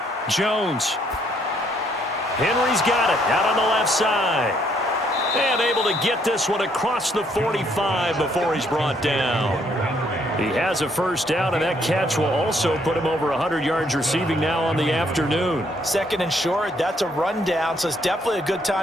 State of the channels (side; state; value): both; normal; correlation 0.69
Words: Jones. Henry's got it out on the left side. And able to get this one across the 45 before he's brought down. He has a first down, and that catch will also put him over 100 yards receiving now on the afternoon. Second and short, that's a rundown, so it's definitely a good